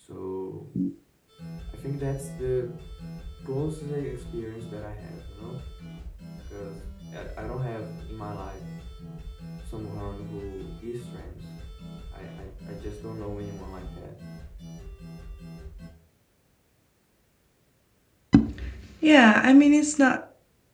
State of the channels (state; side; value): identical; both; correlation 1.00